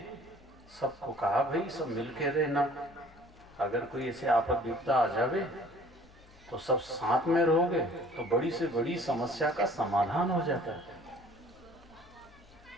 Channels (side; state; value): left; noise; hum, 25 dB below the sound